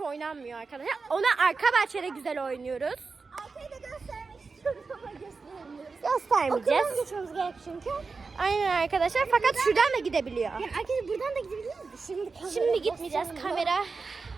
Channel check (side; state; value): left; quieter; 4.4 dB